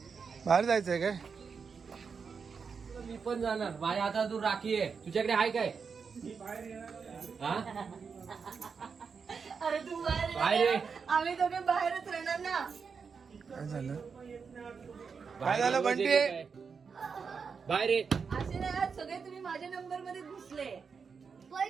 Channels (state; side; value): quieter; left; 5.7 dB